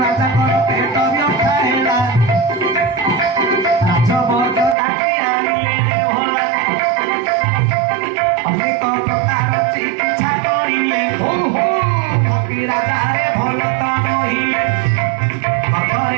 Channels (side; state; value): left; drops out; at 4.8 s